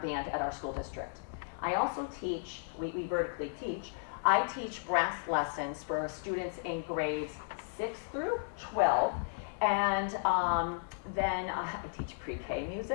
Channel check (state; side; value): silent; right; 55 dB below the other